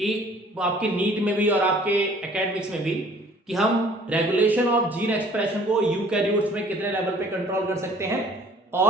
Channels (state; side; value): normal; both; correlation 0.54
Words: आपके नीट में भी और आपके एकेडमिक्स में भी कि हम रेगुलेशन ऑफ जीन एक्सप्रेशन को यूकैरियोट्स में कितने लेवल पे कंट्रोल कर सकते हैं